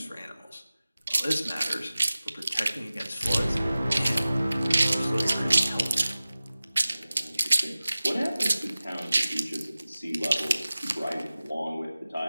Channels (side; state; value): both; inverted; correlation -0.97